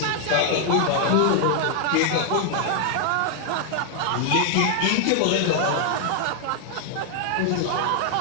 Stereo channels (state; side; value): different; both; correlation 0.00